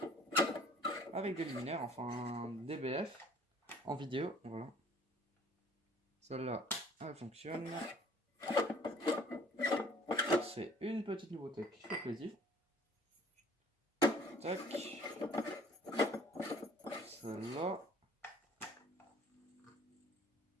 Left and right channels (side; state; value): both; normal; correlation 0.53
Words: avec des luminaires, enfin des BF en vidéo. Voilà. Celle-là, elle fonctionne. C'est une petite nouveauté qui fait plaisir. Tac. Celle-là.